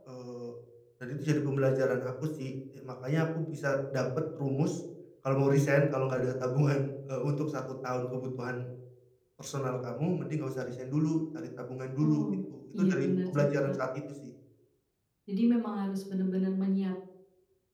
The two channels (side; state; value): both; identical; correlation 1.00